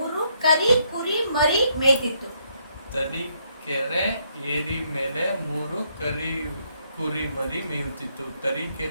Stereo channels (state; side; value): inverted; both; correlation -0.73